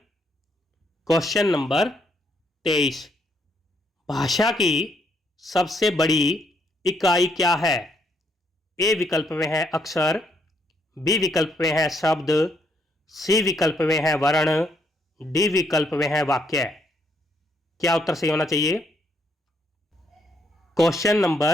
क्वेश्चन नंबर 23, भाषा की सबसे बड़ी इकाई क्या है? ए विकल्प में है अक्षर, बी विकल्प में है शब्द, सी विकल्प में है वर्ण, डी विकल्प में है वाक्य। क्या उत्तर सही होना चाहिए? क्वेश्चन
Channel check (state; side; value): normal; both; correlation 0.73